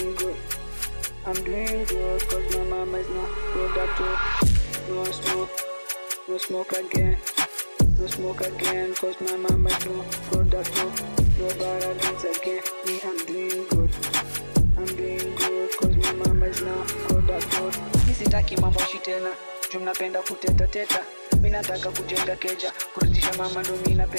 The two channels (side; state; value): both; inverted; correlation -1.00